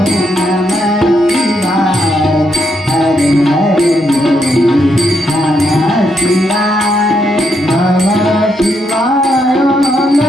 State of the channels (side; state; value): both; normal; correlation 0.78